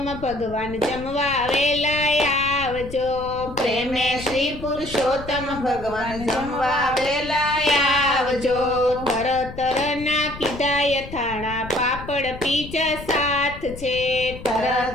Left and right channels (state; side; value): noise; left; rumble, 13 dB below the sound